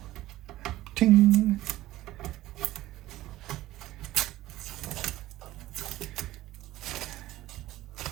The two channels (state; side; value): quieter; left; 15.9 dB